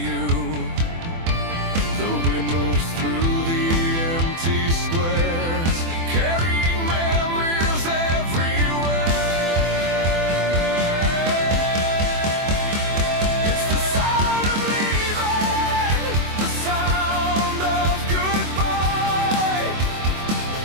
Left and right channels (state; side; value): late; left; 24 ms